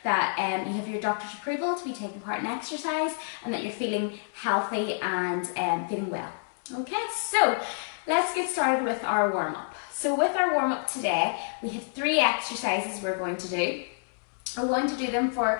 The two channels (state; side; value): silent; right; digital silence